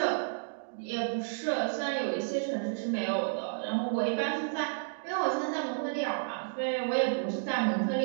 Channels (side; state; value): left; silent; digital silence